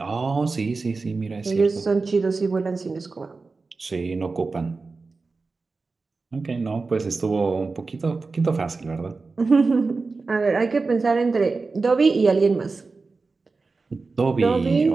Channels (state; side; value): quieter; left; 4.0 dB